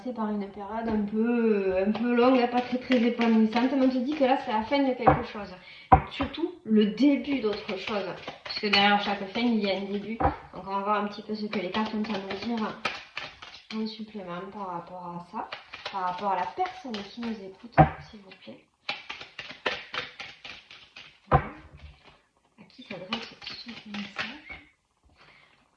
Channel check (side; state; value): both; identical; correlation 1.00